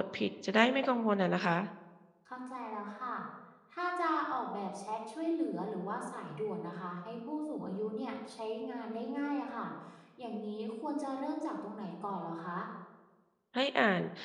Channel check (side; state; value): both; identical; correlation 1.00